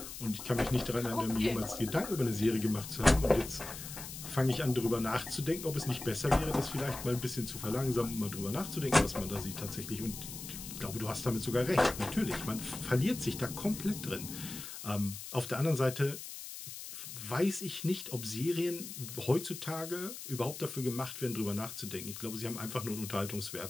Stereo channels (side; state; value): left; noise; hiss, 10 dB below the sound